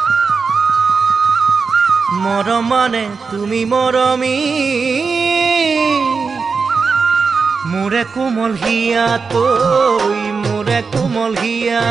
মৰম মানে তুমি মৰমী মোৰে কোমল হিয়াত মোৰে কোমল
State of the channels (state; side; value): quieter; left; 5.0 dB